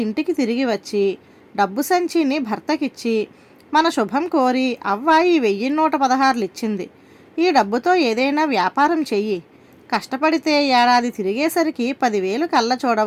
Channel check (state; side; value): identical; both; correlation 1.00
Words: ఇంటికి తిరిగి వచ్చి డబ్బు సంచిని భర్తకిచ్చి మన శుభం కోరి అవ్వ ఈ 1116 ఇచ్చింది. ఈ డబ్బుతో ఏదైనా వ్యాపారం చెయ్యి. కష్టపడితే ఏడాది తిరిగేసరికి 10,000 కళ్ళ